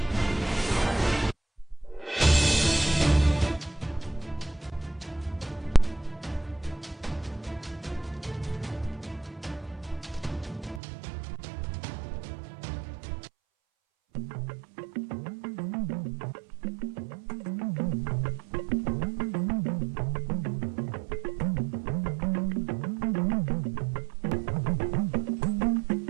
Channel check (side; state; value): left; drops out; at 10.8 s